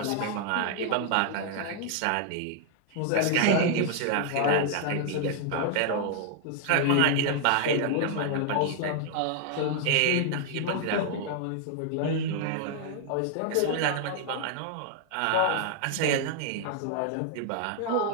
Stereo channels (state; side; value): different; both; correlation 0.00